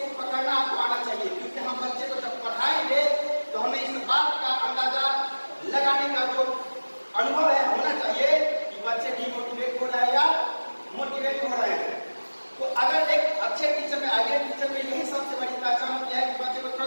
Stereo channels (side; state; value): both; inverted; correlation -1.00